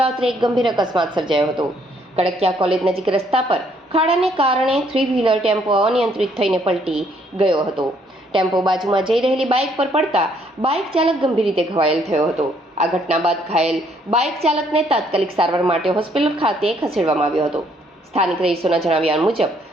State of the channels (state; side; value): normal; both; correlation 0.67